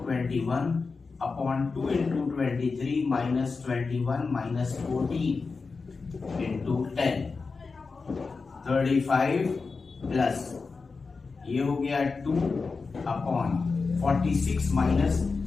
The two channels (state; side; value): quieter; right; 4.4 dB